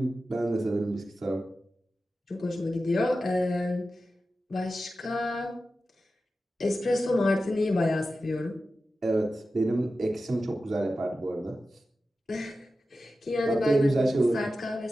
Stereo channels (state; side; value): normal; both; correlation 0.93